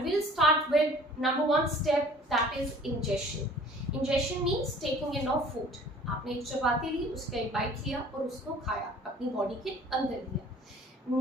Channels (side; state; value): both; normal; correlation 0.50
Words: we'll start with number 1 step, that is ingestion. Ingestion means taking in of food. आपने एक चपाती ली, उसका एक बाइट लिया और उसको खाया, अपनी बॉडी के अंदर लिया.